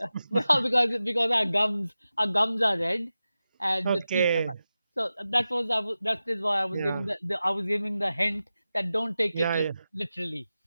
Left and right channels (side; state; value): both; inverted; correlation -0.93